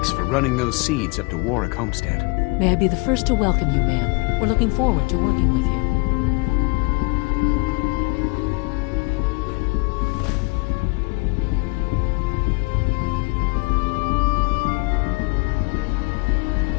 for running those seeds up to Warwick Homestead. May I be the first to welcome you, ma'am. We're looking forward to working with you.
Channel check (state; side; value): quieter; right; 29.5 dB